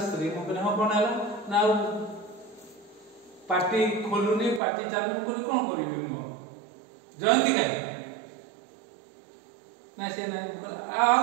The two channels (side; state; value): left; drops out; at 4.6 s